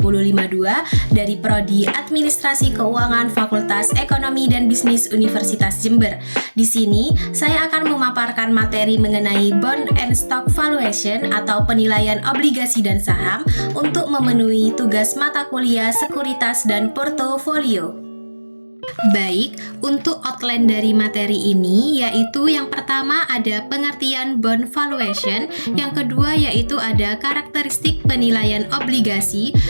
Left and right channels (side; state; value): both; inverted; correlation -1.00